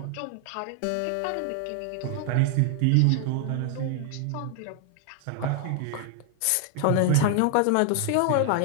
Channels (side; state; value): both; different; correlation 0.00